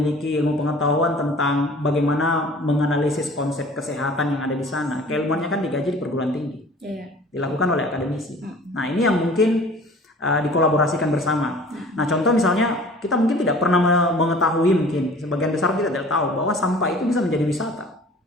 ilmu pengetahuan tentang bagaimana menganalisis konsep kesehatan yang ada di sana, keilmuannya kan digaji di perguruan tinggi, dilakukan oleh akademisi. Nah, ini yang mungkin dikolaborasikan bersama. Nah, contoh misalnya kita mungkin tidak pernah mengetahui, mungkin sebagian besar kita tidak tahu bahwa sampah itu bisa menjadi wisata.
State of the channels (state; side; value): normal; both; correlation 0.47